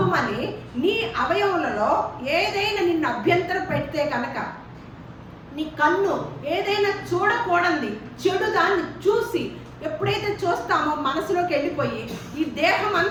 నీ అవయవులలో ఏదైనా నిన్ను అభ్యంతరం పెడితే కనుక, నీ కన్ను ఏదైనా చూడకూడదు చెడు దాన్ని చూసి ఎప్పుడైతే చూస్తామో మనసులోకి వెళ్ళిపోయి ఈ దేహం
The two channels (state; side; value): identical; both; correlation 1.00